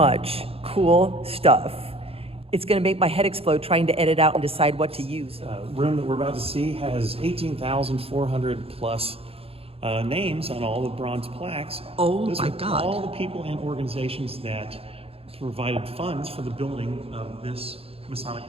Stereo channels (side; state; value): left; late; 0.28 ms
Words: cool stuff. It's going to make my head explode trying to edit out and decide what to use. Room that we're about to see has 18,400 plus names on all the bronze plaques. Oh Those my are God. all the people and organizations that provided funds for the building of this Masonic